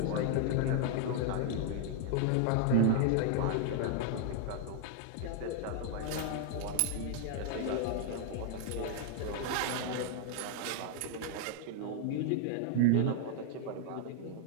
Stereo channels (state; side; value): different; both; correlation 0.00